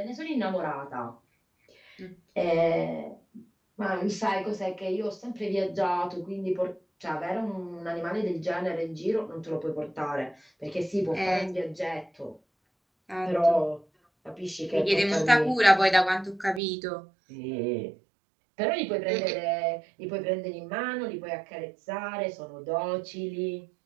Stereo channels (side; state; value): left; drops out; at 16.6 s